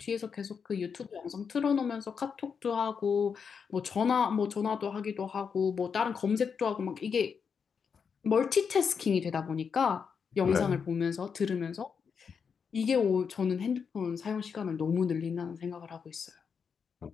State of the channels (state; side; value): quieter; right; 6.3 dB